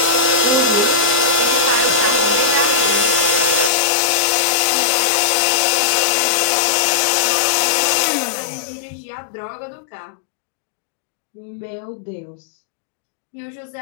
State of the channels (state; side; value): drops out; right; at 3.7 s